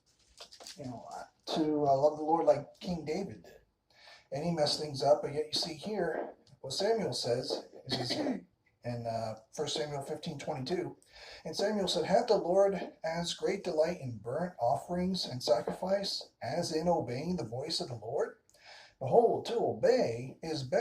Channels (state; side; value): identical; both; correlation 1.00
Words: to love the Lord like King David did. And he messed things up, but yet you see here, what Samuel says, is in 1 Samuel 15:22, and Samuel said, "Hath the Lord as great delight in burnt offerings and sacrifice as in obeying the voice of the Lord? Behold, to obey is